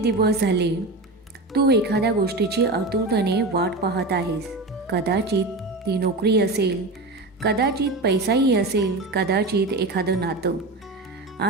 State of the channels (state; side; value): quieter; left; 3.0 dB